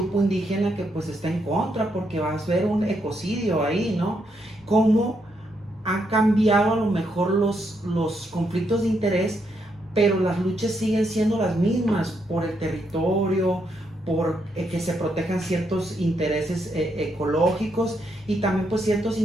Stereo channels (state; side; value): normal; both; correlation 0.78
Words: indígena que pues está en contra porque va a haber un ecocidio ahí, ¿no? ¿Cómo ha cambiado a lo mejor los conflictos de interés pero las luchas siguen siendo las mismas por el territorio, por que se protejan ciertos intereses ecológicos y también pues ciertos